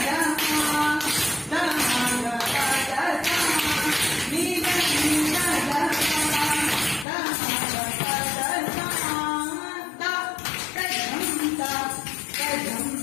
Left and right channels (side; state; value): right; drops out; at 7.1 s